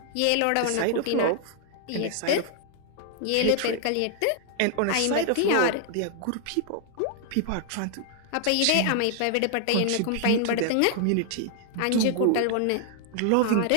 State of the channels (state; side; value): different; both; correlation 0.00